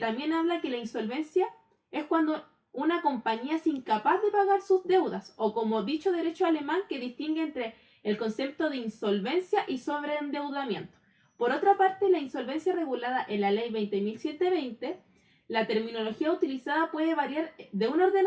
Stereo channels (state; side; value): identical; both; correlation 1.00